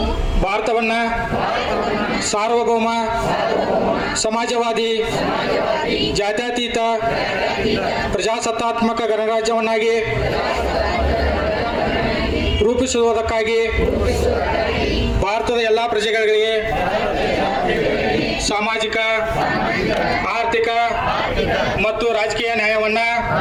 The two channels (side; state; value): both; identical; correlation 1.00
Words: ಭಾರತವನ್ನ ಸಾರ್ವಭೌಮ ಸಮಾಜವಾದಿ ಜಾತ್ಯತೀತ ಪ್ರಜಾಸತ್ತಾತ್ಮಕ ಗಣರಾಜ್ಯವನ್ನಾಗಿ ರೂಪಿಸುವುದಕ್ಕಾಗಿ ಭಾರತದ ಎಲ್ಲ ಪ್ರಜೆಗಳಿಗೆ ಸಾಮಾಜಿಕ, ಆರ್ಥಿಕ ಮತ್ತು ರಾಜಕೀಯ ನ್ಯಾಯವನ್ನ,